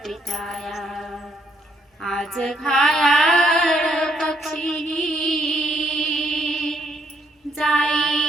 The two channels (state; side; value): normal; both; correlation 0.71